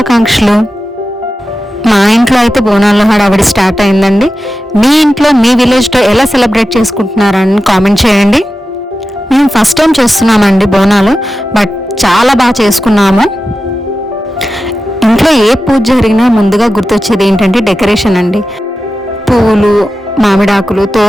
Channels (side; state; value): both; normal; correlation 0.93